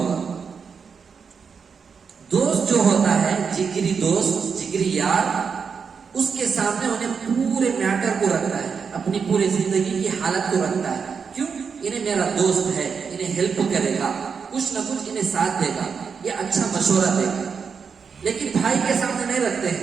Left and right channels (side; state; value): left; quieter; 6.0 dB